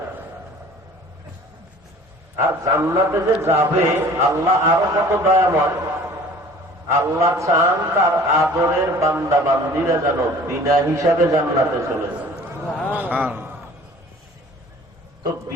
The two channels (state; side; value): normal; both; correlation 0.48